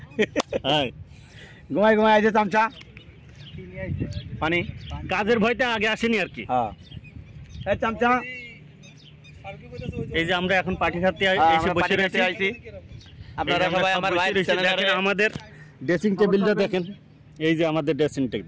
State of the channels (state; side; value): identical; both; correlation 1.00